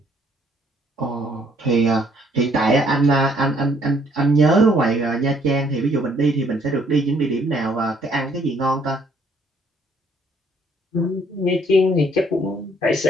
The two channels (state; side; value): normal; both; correlation 0.64